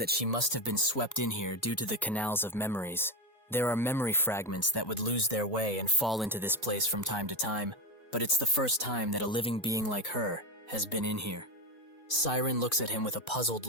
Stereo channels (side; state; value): both; normal; correlation 0.14